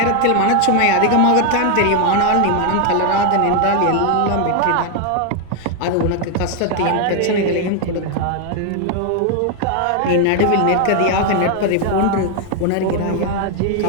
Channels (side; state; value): both; different; correlation 0.00